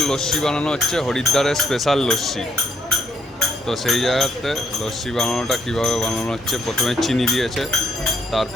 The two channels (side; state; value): both; normal; correlation 0.71